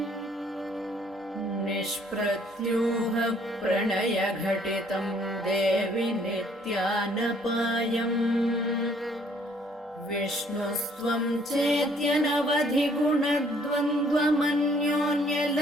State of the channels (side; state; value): both; normal; correlation 0.62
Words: निष्प्रत्यूह प्रणयघटितं देवि नित्यानपायम् विष्णुस्त्वं